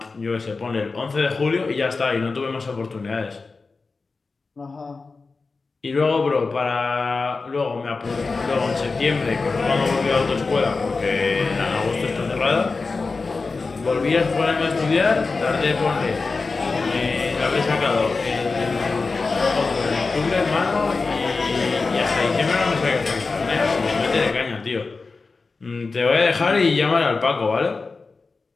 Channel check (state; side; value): quieter; right; 4.1 dB